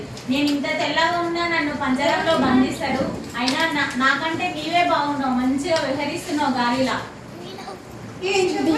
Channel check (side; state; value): both; identical; correlation 1.00